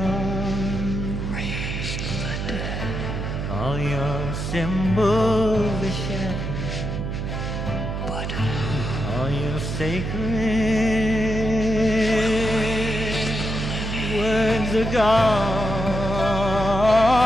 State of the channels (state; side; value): noise; right; hum, 3 dB below the sound